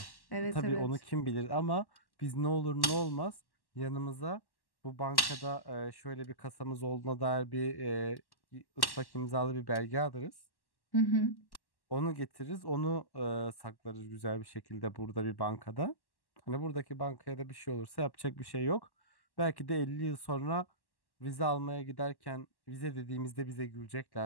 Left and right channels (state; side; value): late; right; 1.1 ms